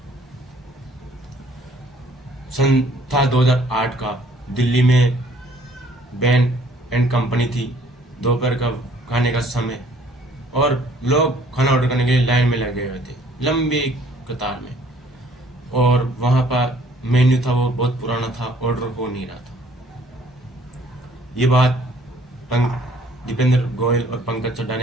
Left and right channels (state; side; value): normal; both; correlation 0.59